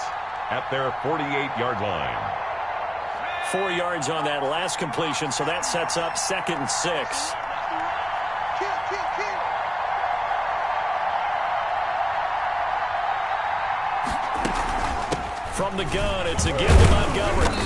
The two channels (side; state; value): both; identical; correlation 1.00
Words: at their 48-yard line. 4 yards on that last completion, so that sets up 2nd and 6. From the gun, it's again to Montgomery.